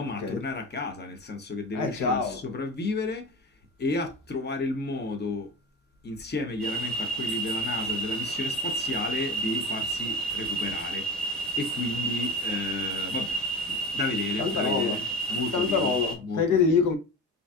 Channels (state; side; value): normal; both; correlation 0.31